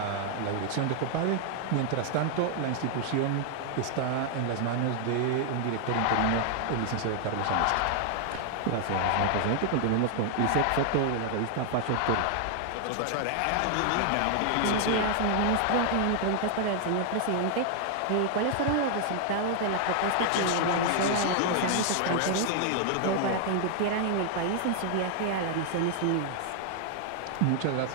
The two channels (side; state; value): both; different; correlation 0.00